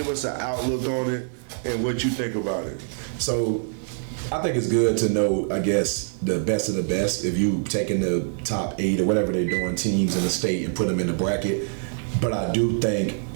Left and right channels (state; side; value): silent; left; digital silence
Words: us an outlook on it and what you think about it. So I think it's good to know, I guess, the best of the best. If you taking the top 8 or whatever they're doing teams in the state and put them in the bracket. But I do think